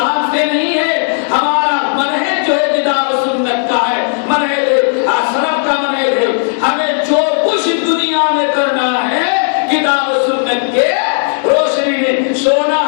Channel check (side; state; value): right; silent; digital silence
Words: سے نہیں ہے، ہمارا منہج جو ہے کتاب و سنت کا ہے، منہج سلف کا منہج ہے۔ ہمیں جو کچھ دنیا میں کرنا ہے کتاب و سنت کے روشنی میں، سونا